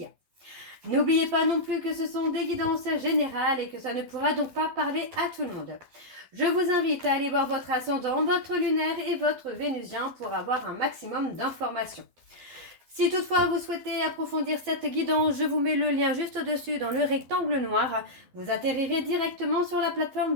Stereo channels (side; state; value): left; late; 12 ms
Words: a. N'oubliez pas non plus que ce sont des guidances générales et que ça ne pourra donc pas parler à tout le monde. Je vous invite à aller voir votre ascendant, votre lunaire et votre vénusien pour avoir un maximum d'informations. Si toutefois vous souhaitez approfondir cette guidance, je vous mets le lien juste au-dessus dans le rectangle noir. Vous atterrirez directement sur la